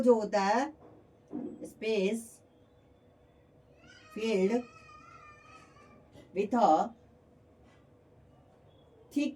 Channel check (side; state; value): both; identical; correlation 1.00